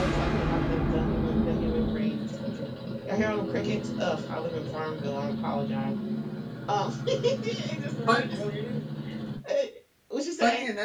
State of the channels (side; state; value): both; identical; correlation 1.00